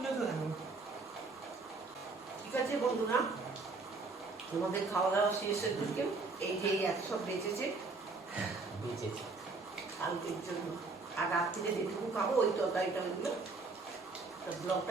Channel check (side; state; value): left; quieter; 3.8 dB